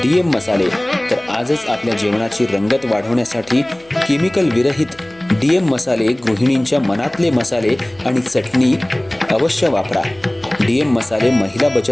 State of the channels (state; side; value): noise; left; hum, 30 dB below the sound